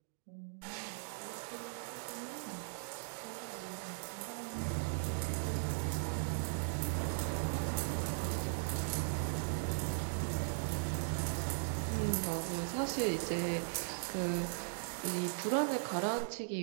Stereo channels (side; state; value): left; silent; digital silence